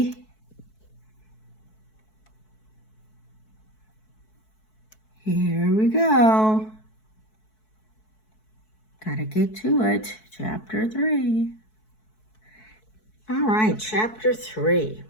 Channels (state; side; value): late; right; 4.6 ms